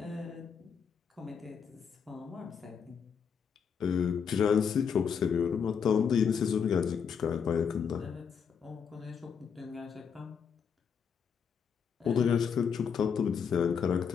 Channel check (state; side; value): quieter; right; 6.8 dB